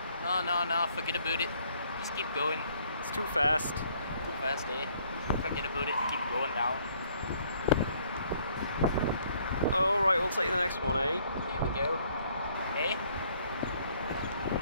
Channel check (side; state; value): both; inverted; correlation -0.64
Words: No, forget about it. Just keep going. It's too fast. Too fast, eh? Forget about it, keep going down. Alright, we'll take the next one, eh? Here we go. Eh?